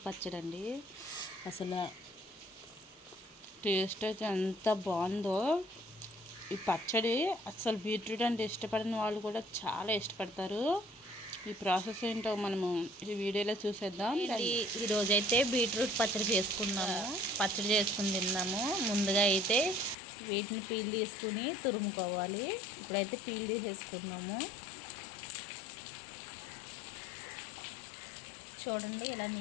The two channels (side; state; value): right; drops out; at 20.0 s